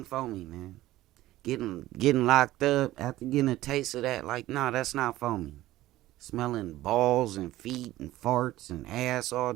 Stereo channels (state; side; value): quieter; left; 15.8 dB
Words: for me, man. Getting locked up after getting a taste of that, like, nah, that's not for me. Smelling balls and feet and farts and ass all